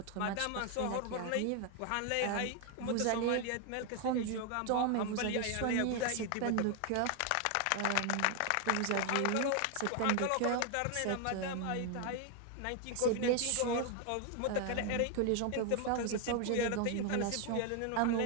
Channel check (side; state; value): both; different; correlation 0.01